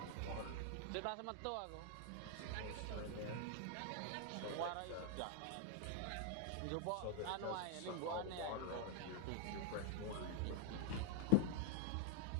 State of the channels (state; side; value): different; both; correlation -0.01